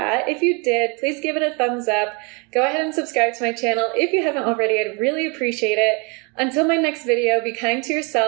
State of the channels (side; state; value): left; quieter; 31.6 dB